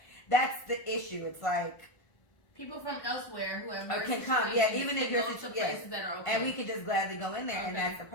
that's the issue. It's like, people from elsewhere who have can come, yeah, even if you're to places that are okay, and we can just gladly go in there, and that's the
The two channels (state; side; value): late; right; 1.5 ms